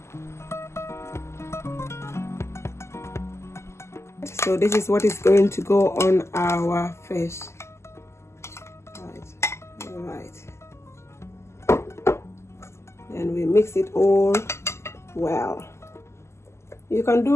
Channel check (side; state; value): right; late; 0.13 ms